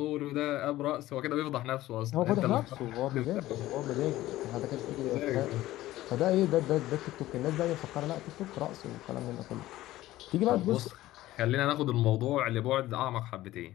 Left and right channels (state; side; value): quieter; right; 15.8 dB